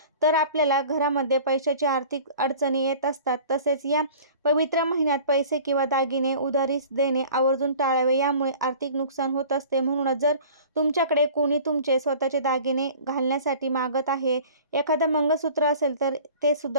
तर आपल्याला घरामध्ये पैशाची आर्थिक अडचणी येत असतात. तसेच या पवित्र महिन्यात पैसे किंवा दागिने उधारीस देणे आवर्जून टाळावे, यामुळे आर्थिक नुकसान होत असते. म्हणूनच जर तुमच्याकडे कोणी तुमचे स्वतःचे दागिने घालण्यासाठी मागत आहे, एखादं मंगळसूत्र असेल तर ते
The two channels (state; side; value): inverted; both; correlation -0.45